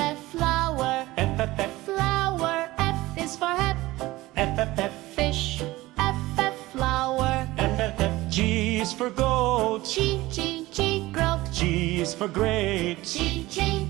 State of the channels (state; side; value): quieter; left; 18.7 dB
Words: flower. Flower. F is for hat. Fish. F, flower. G is for goat. G, goat. G is for great. G,